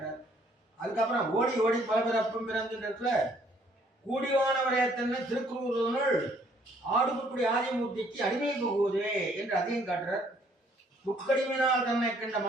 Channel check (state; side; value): normal; both; correlation 0.64